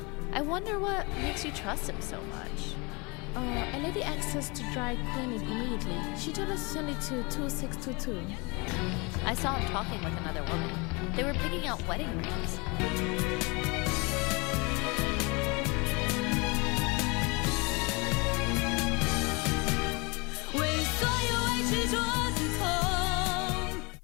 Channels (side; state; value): right; quieter; 28.4 dB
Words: I wonder what makes you trust him so much. A lady asked us to dry clean it immediately. She told us to send it to 2622. I saw him talking with another woman. They were picking out wedding rings.